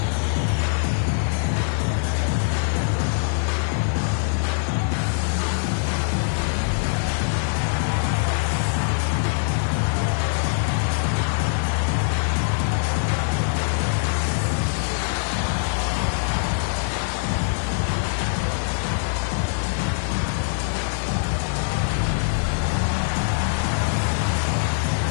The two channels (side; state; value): right; silent; 63 dB below the other